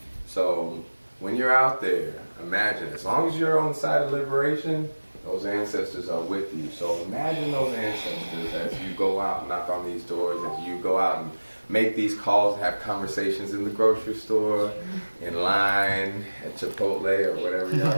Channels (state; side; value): inverted; both; correlation -1.00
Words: So when you're out there, imagine, as long as you're on the side of liberation, those ancestors are with you. So imagine those ancestors as you go out and knock on these doors, as you go out and make these calls, have conversations in the grocery store, in line, at Chipotle, or whatever y'all